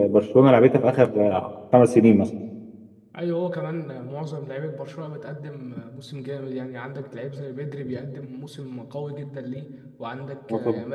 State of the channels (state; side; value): identical; both; correlation 1.00